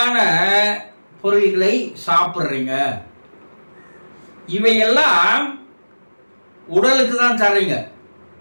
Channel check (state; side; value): inverted; both; correlation -1.00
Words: பொருள்களை சாப்பிட்றீங்க. இவையெல்லாம் உடலுக்கு தான் தர்றீங்க.